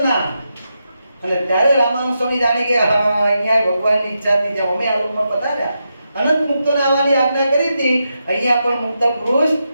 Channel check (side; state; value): both; inverted; correlation -0.86